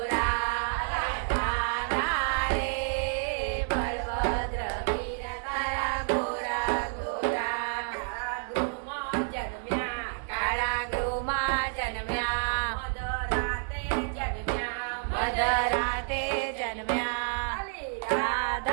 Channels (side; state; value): left; silent; 58 dB below the other